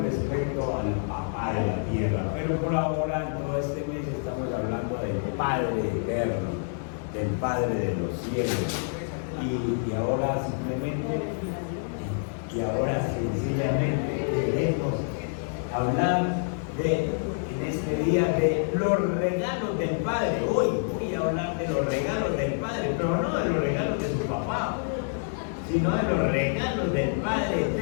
respecto al papá de la tierra, pero por ahora en todo este mes estamos hablando del Padre eterno, del Padre de los cielos, y ahora sencillamente queremos hablar en este día de los regalos del Padre. Hoy voy a hablar de los regalos del Padre, pero no de los regalos de su papá, sino de los regalos del Padre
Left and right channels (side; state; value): right; silent; digital silence